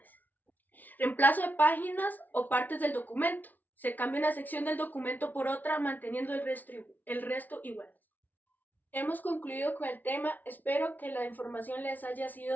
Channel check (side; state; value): right; late; 0.081 ms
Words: Reemplazo de páginas o partes del documento. Se cambia una sección del documento por otra, manteniendo el resto igual. Hemos concluido con el tema. Espero que la información les haya